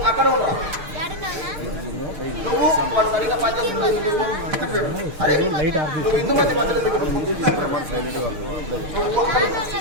అక్కడ ఉండవు. నువ్వు వాడు సరిగా పనిచేస్తున్నావు. అరే నువ్వు హిందూమతి మందిరం దగ్గర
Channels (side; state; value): left; late; 6.6 ms